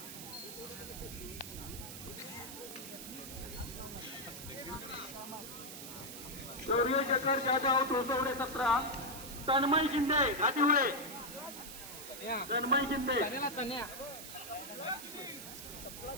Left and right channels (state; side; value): noise; right; hiss, 11 dB below the sound